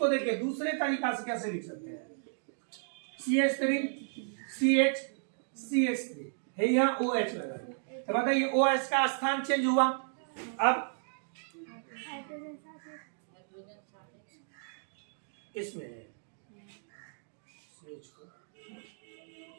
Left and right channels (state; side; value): silent; left; digital silence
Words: देखिए दूसरे तरीका से कैसे लिख सकते हैं, CH3 CH CH3 है, यहाँ OH लगा। तो बताइए OH का स्थान चेंज हुआ। अब इसमें